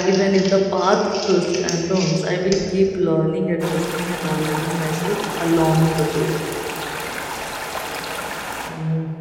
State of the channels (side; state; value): both; identical; correlation 1.00